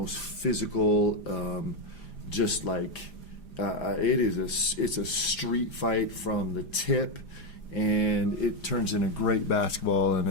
physical, it's a street fight from the tip. And it turns into great basketball, and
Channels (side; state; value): right; late; 5.0 ms